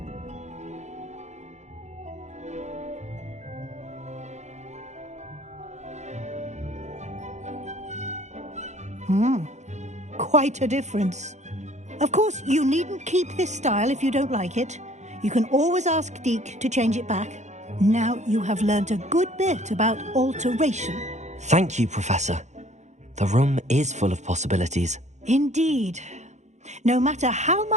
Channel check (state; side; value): late; left; 0.33 ms